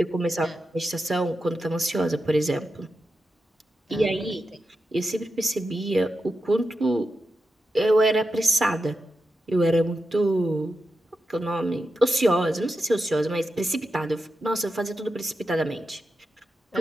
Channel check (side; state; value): both; normal; correlation 0.89